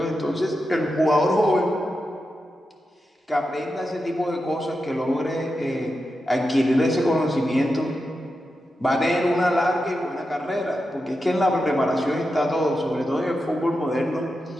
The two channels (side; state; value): both; normal; correlation 0.89